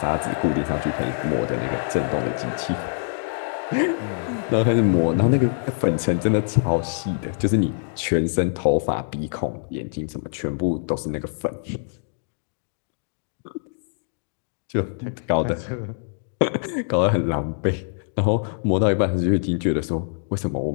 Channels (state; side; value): silent; right; digital silence